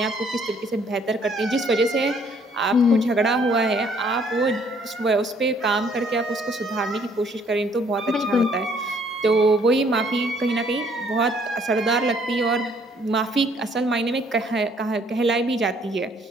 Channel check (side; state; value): both; normal; correlation 0.63